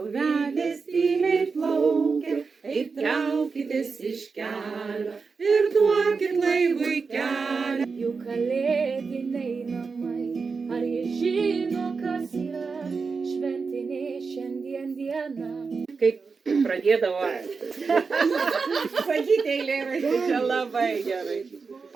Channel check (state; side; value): quieter; left; 4.9 dB